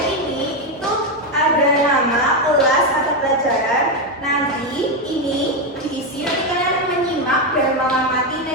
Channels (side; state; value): both; normal; correlation 0.07